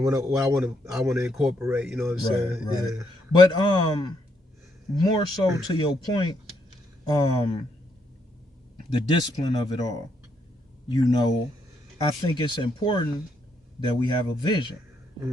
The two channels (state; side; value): normal; both; correlation 0.75